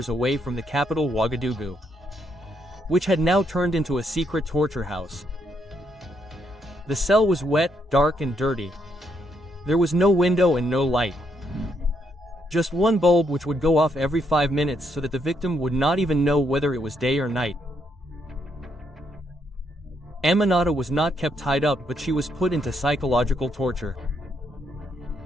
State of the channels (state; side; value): normal; both; correlation 0.76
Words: away from the capital Ouagadougou, which had now turned into a secret torture house. The cell was wet, dark and dirty. There was no window and no light. Just one bulb which would go off every 5 minutes so that the victim would not even know whether it was day or night. Aminata was not kept tied up, but she was put into psychological torture.